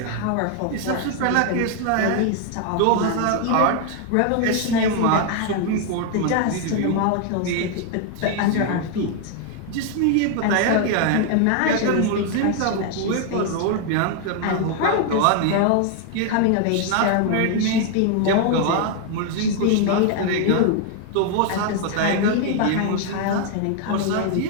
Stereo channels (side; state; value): both; different; correlation 0.00